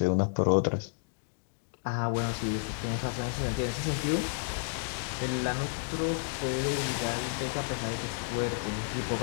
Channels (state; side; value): silent; right; digital silence